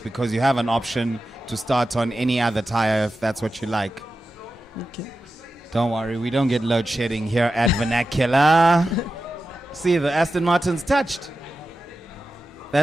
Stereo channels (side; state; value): both; normal; correlation 0.92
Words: you have an option to start on any other tire if that's what you like. Okay. Don't worry, we don't get load shedding here at Vernacular. See, the Aston Martin's touched.